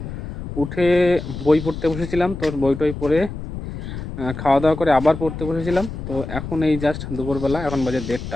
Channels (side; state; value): left; noise; rumble, 8 dB below the sound